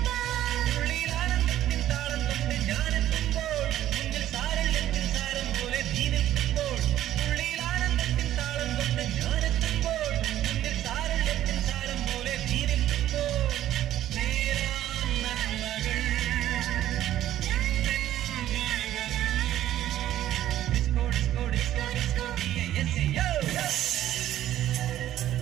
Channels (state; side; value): quieter; left; 12.7 dB